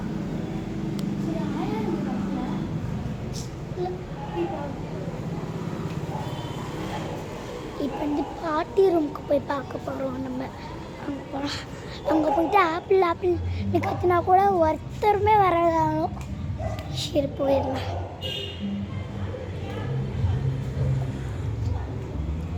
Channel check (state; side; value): identical; both; correlation 1.00